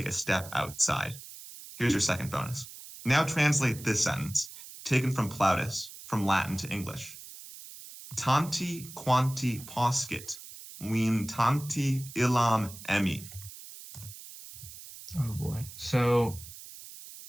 a step outside. Here's your second bonus. Now translate this sentence, taken from Plautus, from Latin to English. Tanti quanti poscit, win tanti illam emi. Oh boy. So,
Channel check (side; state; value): right; noise; hiss, 15 dB below the sound